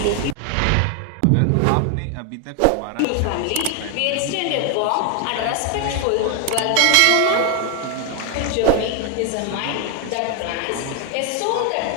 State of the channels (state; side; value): different; both; correlation 0.01